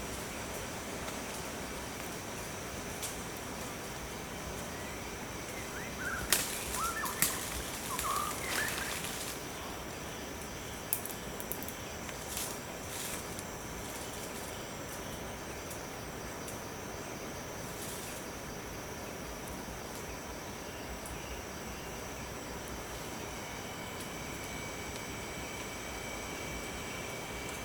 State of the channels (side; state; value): both; identical; correlation 1.00